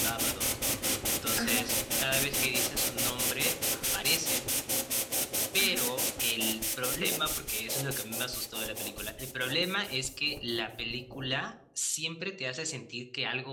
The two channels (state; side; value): identical; both; correlation 1.00